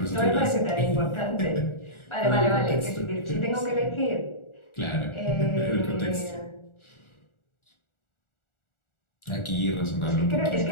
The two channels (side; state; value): right; late; 1.4 ms